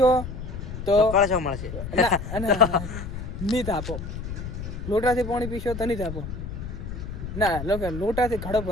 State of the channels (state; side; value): noise; left; rumble, 7 dB below the sound